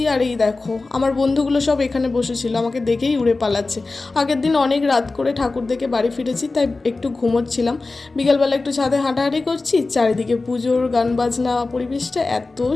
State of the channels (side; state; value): right; quieter; 3.6 dB